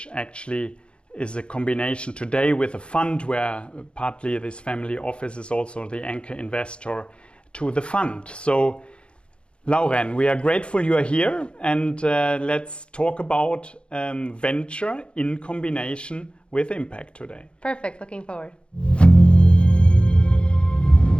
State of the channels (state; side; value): late; right; 0.057 ms